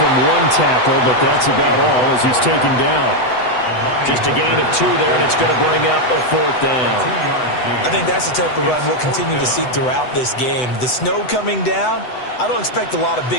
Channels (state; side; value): late; right; 8.0 ms